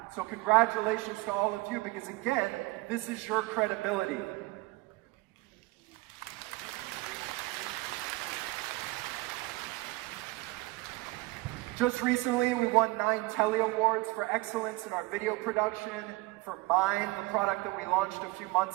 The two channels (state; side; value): quieter; left; 21.7 dB